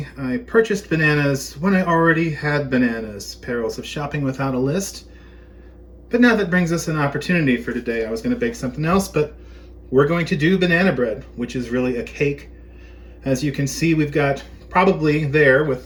I purchased bananas when I already had bananas. Perils of shopping without a list. But now that brings us an opportunity for today. I was going to bake something else, but we're going to do banana bread, which is really a cake. As you can see, we've got probably there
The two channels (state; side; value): identical; both; correlation 1.00